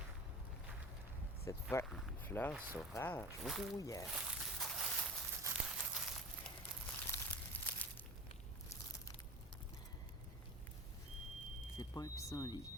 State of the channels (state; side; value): normal; both; correlation 0.35